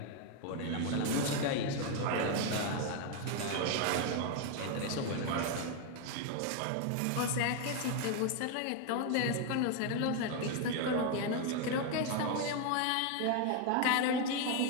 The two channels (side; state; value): both; different; correlation 0.01